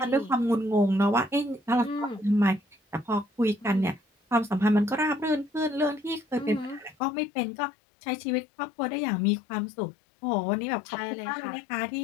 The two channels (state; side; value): drops out; right; at 7.0 s